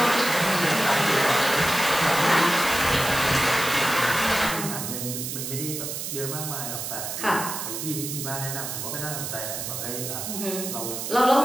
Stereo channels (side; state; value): right; noise; hiss, 5 dB below the sound